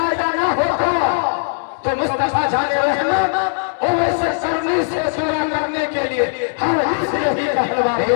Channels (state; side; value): silent; right; digital silence